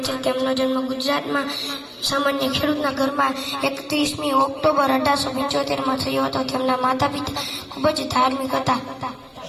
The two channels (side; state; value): both; identical; correlation 1.00